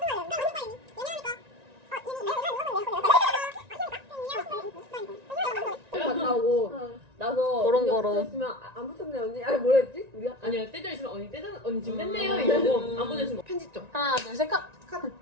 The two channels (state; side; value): late; left; 1.9 ms